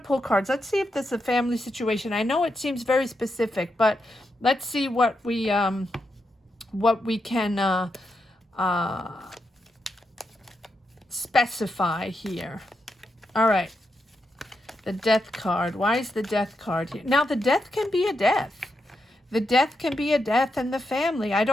cards. Let's see if this is a family situation. I know it seems very specific, but let's see what we can specify here. All right. The Death card. Why is the Death card here? Now, the death can be a death. The death can be a death in the family. I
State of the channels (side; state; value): both; normal; correlation 0.85